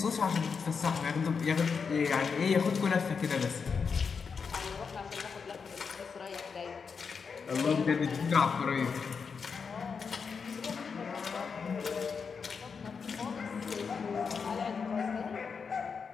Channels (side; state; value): right; quieter; 5.7 dB